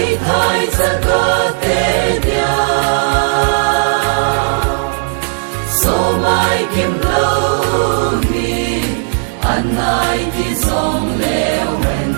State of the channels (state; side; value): silent; left; digital silence